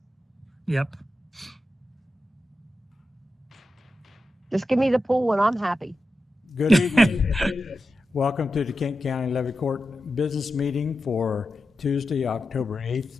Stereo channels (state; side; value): normal; both; correlation 0.91